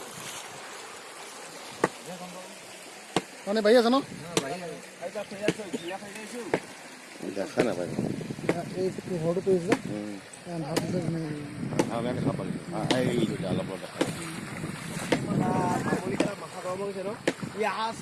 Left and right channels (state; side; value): identical; both; correlation 1.00